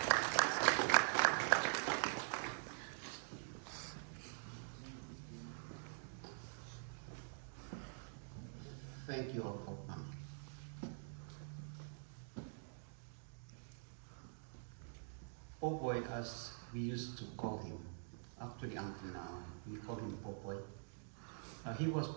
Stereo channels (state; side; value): silent; left; digital silence